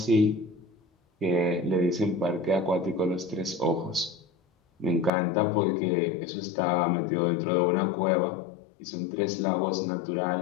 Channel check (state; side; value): drops out; right; at 5.1 s